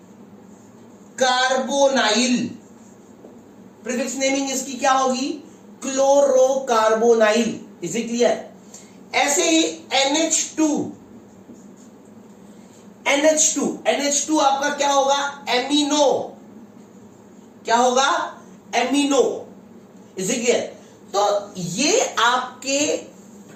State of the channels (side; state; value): both; identical; correlation 1.00